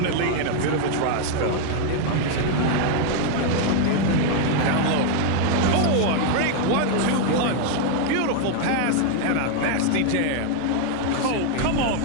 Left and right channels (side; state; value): both; different; correlation 0.01